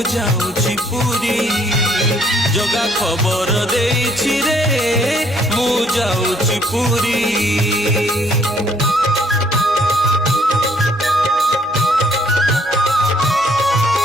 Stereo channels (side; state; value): both; normal; correlation 0.64